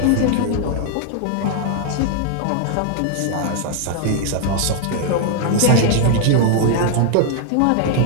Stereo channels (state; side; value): different; both; correlation 0.00